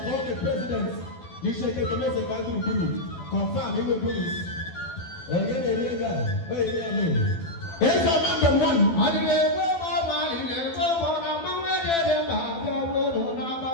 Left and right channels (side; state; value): right; late; 12 ms